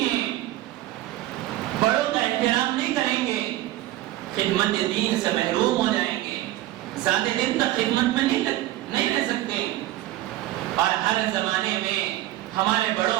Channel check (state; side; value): quieter; left; 15.5 dB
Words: ہے۔ بڑوں کا احترام نہیں کریں گے، خدمت دین سے محروم ہو جائیں گے، زیادہ دن تک خدمت میں نہیں رہ سکتے۔ اور ہر زمانے میں ہمارے